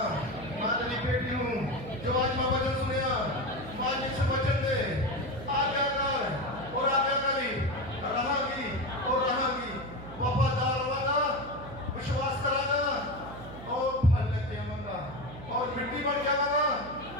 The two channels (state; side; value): noise; right; hum, 14 dB below the sound